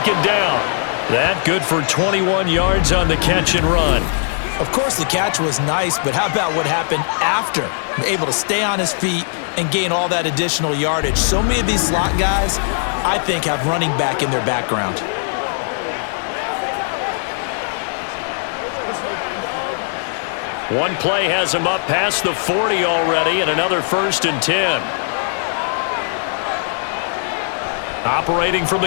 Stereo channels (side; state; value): right; silent; digital silence